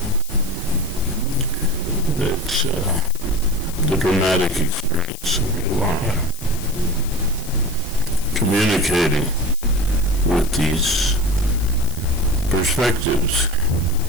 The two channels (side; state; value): left; noise; hiss, 15 dB below the sound